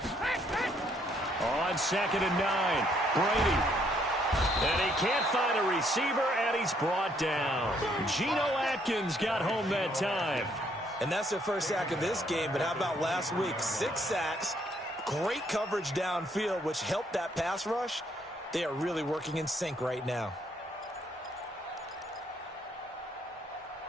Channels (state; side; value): normal; both; correlation 0.69